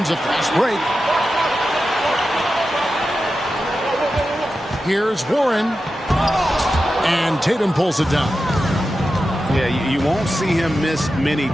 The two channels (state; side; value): normal; both; correlation 0.92